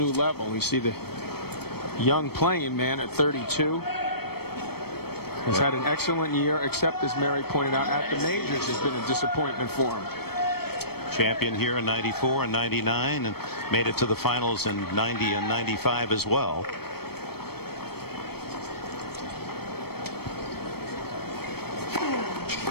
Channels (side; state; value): right; late; 0.96 ms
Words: level. We see the young playing man at 32 has had an excellent year, except, as Mary pointed out, at the majors has been a disappointment for him. Champion here in 94 and 99, and made it to the finals in 90 and 95 as well.